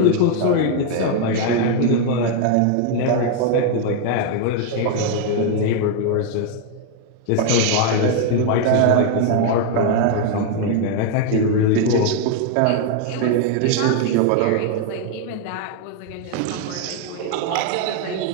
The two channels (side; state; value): both; different; correlation 0.00